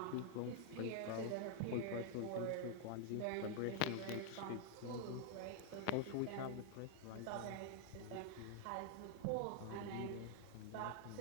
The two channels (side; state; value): both; different; correlation 0.00